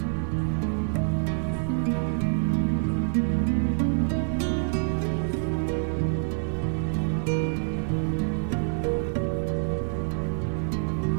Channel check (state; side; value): silent; left; 60 dB below the other